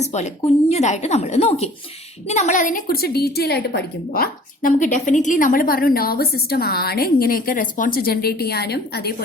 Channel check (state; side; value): normal; both; correlation 0.50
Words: പോലെ കുഞ്ഞതായിട്ട് നമ്മൾ നോക്കി. ഇനി നമ്മൾ അതിനെ കുറിച്ച് ഡീറ്റെയിൽ ആയിട്ട് പഠിക്കുമ്പോൾ നമുക്ക് ഡെഫിനറ്റ്ലി നമ്മൾ പറഞ്ഞു നെർവസ് സിസ്റ്റം ആണ് ഇങ്ങനെയൊക്കെ റെസ്പോൺസ് ജനറേറ്റ് ചെയ്യാനും